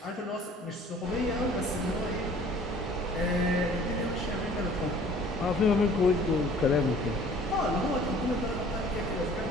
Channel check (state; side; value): normal; both; correlation 0.51